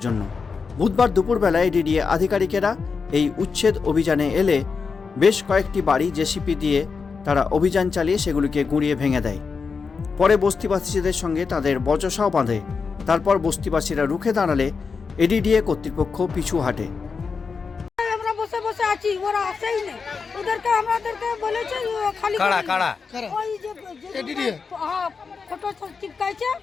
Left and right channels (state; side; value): quieter; right; 5.2 dB